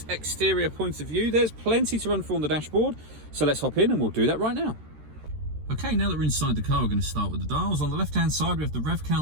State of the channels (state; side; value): late; left; 13 ms